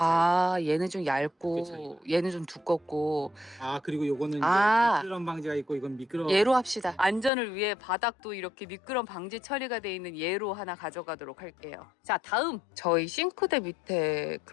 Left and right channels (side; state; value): right; drops out; at 7.3 s